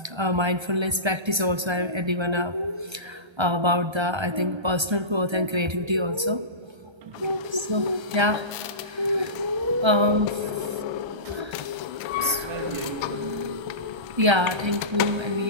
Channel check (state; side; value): late; left; 1.3 ms